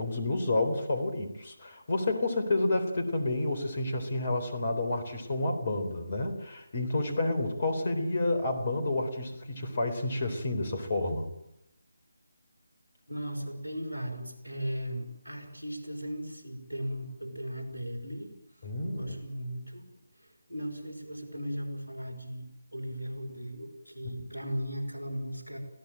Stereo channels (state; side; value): inverted; both; correlation -0.85